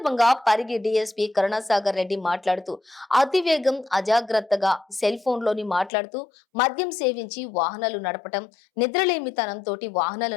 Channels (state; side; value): drops out; right; at 5.9 s